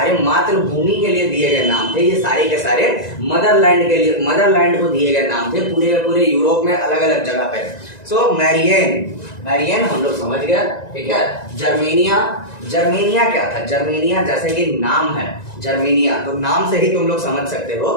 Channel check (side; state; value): right; late; 1.9 ms